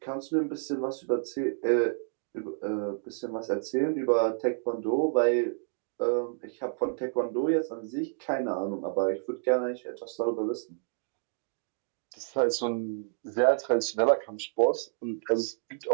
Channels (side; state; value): left; silent; digital silence